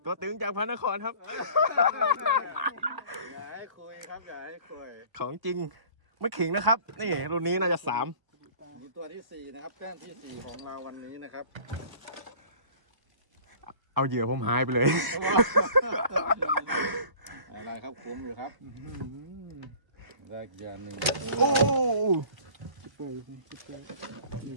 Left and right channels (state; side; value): late; left; 1.0 ms